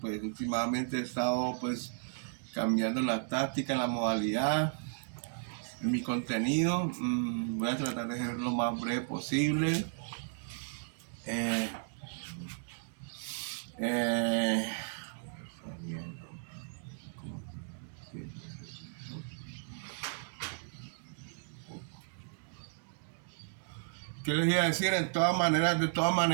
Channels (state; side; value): silent; left; digital silence